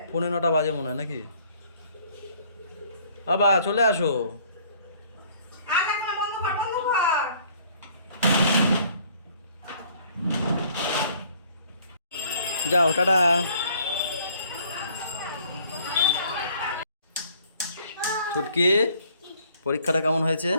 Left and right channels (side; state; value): both; inverted; correlation -0.58